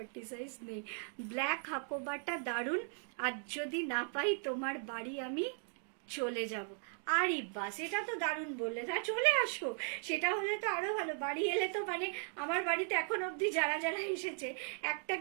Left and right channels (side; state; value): left; silent; 53 dB below the other